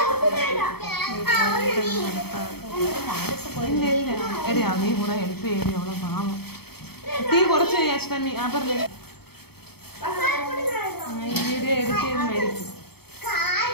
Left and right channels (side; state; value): right; late; 0.96 ms